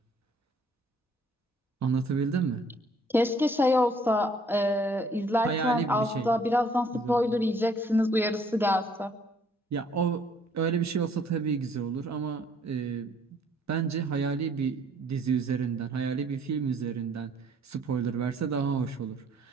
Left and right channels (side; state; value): both; normal; correlation 0.62